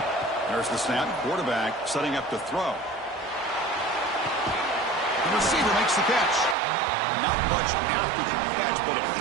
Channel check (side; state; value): left; drops out; at 6.6 s